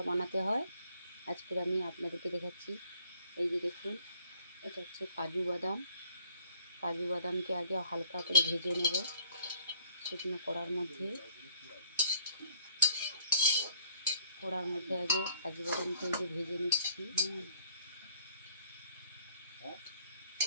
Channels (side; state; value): both; inverted; correlation -0.61